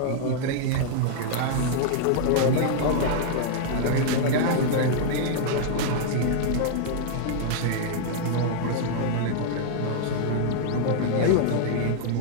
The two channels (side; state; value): both; different; correlation -0.01